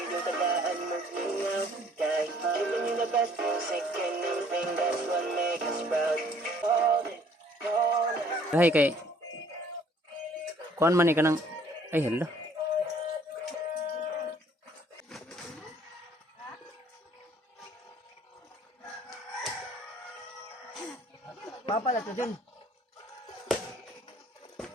tagaan mag-ingaw. Kahit giving you the best music and everything, that's what makes us proud. Hold it, hold it. Hay kay kuan man ka nang ay hello. Papa la dyan.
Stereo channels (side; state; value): both; normal; correlation 0.59